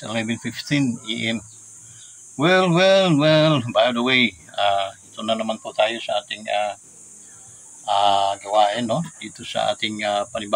11:15 AM. Well, by the way, ito na naman po tayo sa ating gawain, no? Dito sa ating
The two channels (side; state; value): both; identical; correlation 1.00